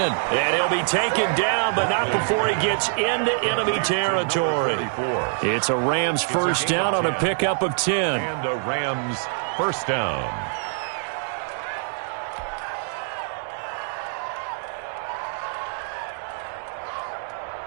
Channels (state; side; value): silent; left; digital silence